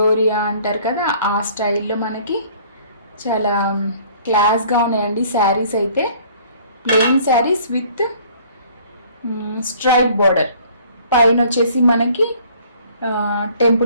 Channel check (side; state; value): both; inverted; correlation -0.55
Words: అంటారు కదా, ఆ స్టైల్లో మనకి చాలా క్లాస్గా ఉన్నాయండి శారీస్. అయితే plain saris with stripe border, పైన వచ్చేసి మనకి